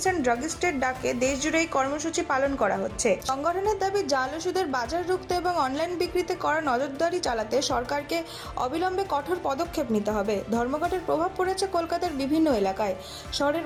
and ড্রাগিস্টের ডাকে দেশজুড়ে এই কর্মসূচি পালন করা হচ্ছে। সংগঠনের দাবি, জাল ওষুধের বাজার রুখতে এবং অনলাইন বিক্রিতে করা নজরদারি চালাতে সরকারকে অবিলম্বে কঠোর পদক্ষেপ নিতে হবে। ধর্মঘটের প্রভাব পড়েছে কলকাতার বিভিন্ন এলাকায়। শহরের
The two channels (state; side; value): identical; both; correlation 1.00